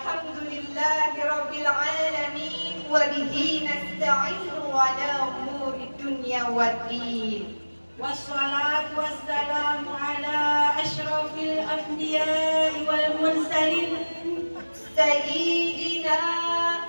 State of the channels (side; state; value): both; inverted; correlation -1.00